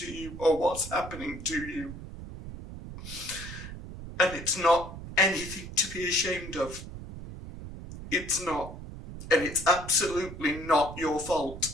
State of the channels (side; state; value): right; noise; rumble, 11 dB below the sound